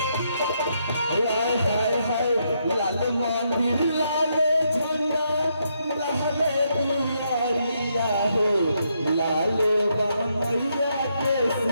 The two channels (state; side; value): inverted; both; correlation -0.77